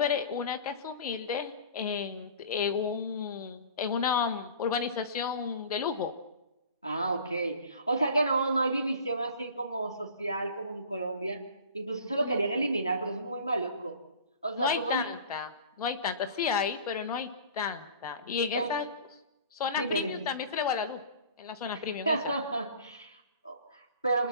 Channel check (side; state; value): both; inverted; correlation -0.43